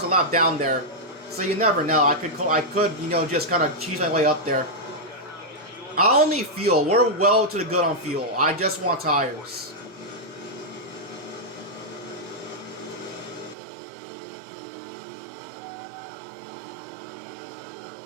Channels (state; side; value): drops out; left; at 13.6 s